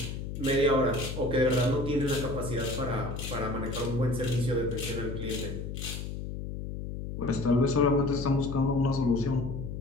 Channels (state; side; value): noise; left; hum, 6 dB below the sound